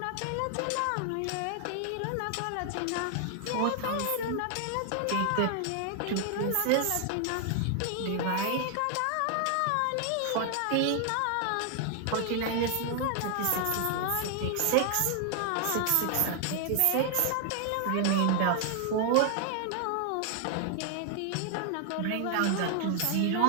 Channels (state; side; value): different; both; correlation 0.00